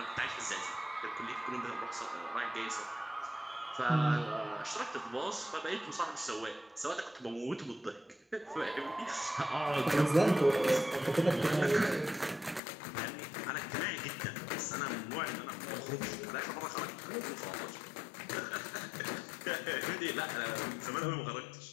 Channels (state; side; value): drops out; right; at 12.6 s